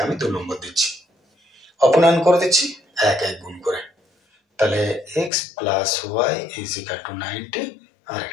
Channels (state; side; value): drops out; right; at 5.3 s